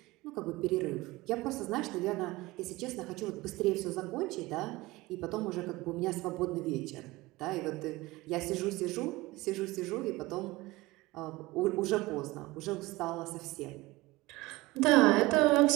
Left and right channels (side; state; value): left; quieter; 20.7 dB